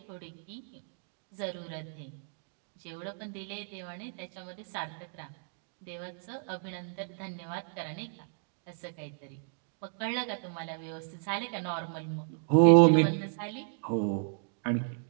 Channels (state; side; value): silent; left; digital silence